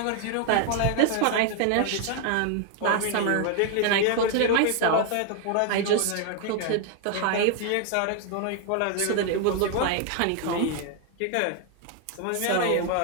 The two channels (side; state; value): both; different; correlation 0.00